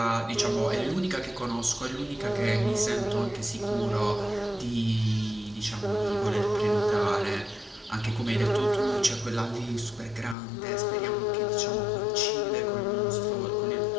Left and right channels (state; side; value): drops out; right; at 10.4 s